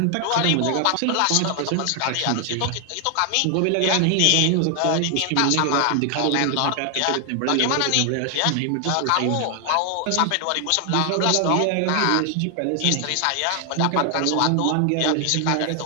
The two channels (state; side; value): different; both; correlation 0.00